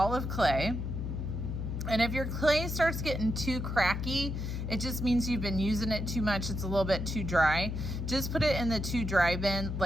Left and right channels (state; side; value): noise; left; hum, 3 dB below the sound